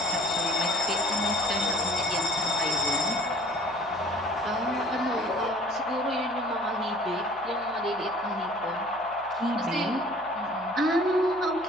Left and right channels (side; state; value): right; noise; hum, 25 dB below the sound